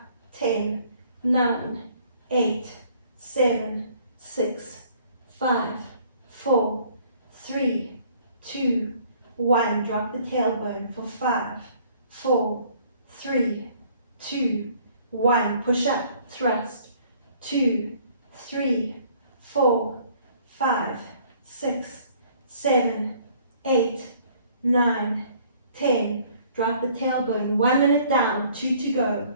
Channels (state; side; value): inverted; both; correlation -0.58